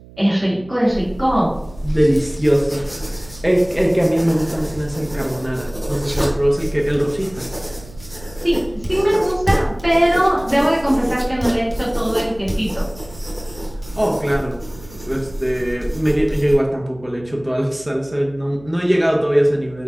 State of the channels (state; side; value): noise; right; hum, 21 dB below the sound